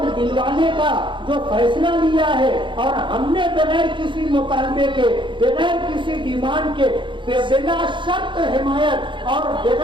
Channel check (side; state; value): left; late; 0.23 ms